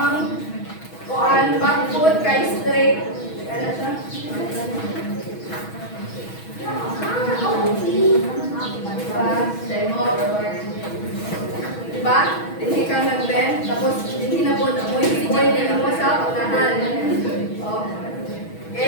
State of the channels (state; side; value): late; right; 6.2 ms